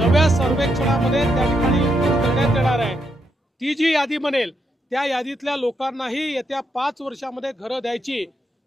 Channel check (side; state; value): both; normal; correlation 0.80